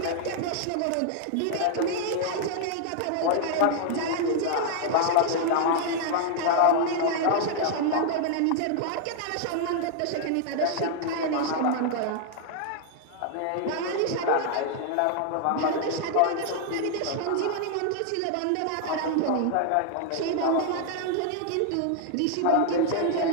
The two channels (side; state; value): both; different; correlation 0.00